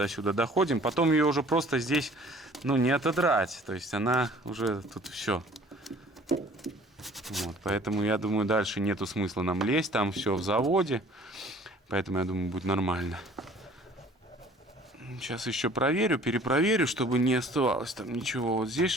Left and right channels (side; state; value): both; normal; correlation 0.52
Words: сюда доходим. Потом ее уже просто здесь, ну, не отодрать. То есть она уже тут все. Вот. Поэтому, я думаю, дальше нету смысла нам лезть. Там все в заводе. Поэтому, я думаю, будет нормально. Сейчас еще проверю, перепроверю, чтобы не оставалось там ничего. Вот здесь